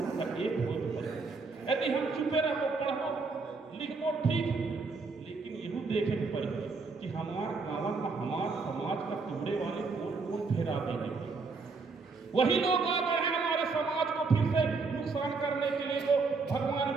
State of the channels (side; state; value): left; quieter; 4.3 dB